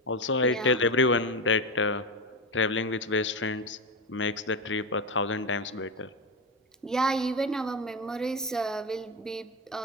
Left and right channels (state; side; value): normal; both; correlation 0.16